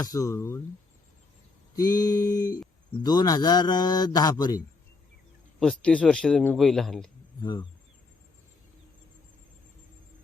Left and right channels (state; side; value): quieter; right; 4.0 dB